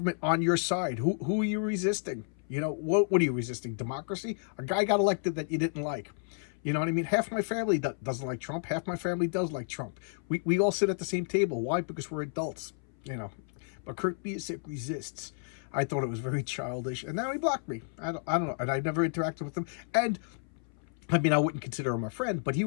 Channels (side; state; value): right; silent; 57 dB below the other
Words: on your side. Who are you resisting? You know, what are you resisting? Democracy? A guy got elected that you didn't like. You know what I mean? Half my family doesn't like Trump. Half my family does like Trump. We all sit at the same table. Why? Because we're adults. You know. But Kurt Busiek resists. I thought it was very childish, and now he blocked me. I don't know, and I never interacted with him. And I mean, I wouldn't consider him a friend, but he